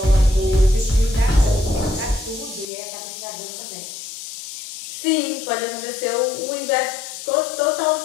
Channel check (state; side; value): drops out; right; at 2.7 s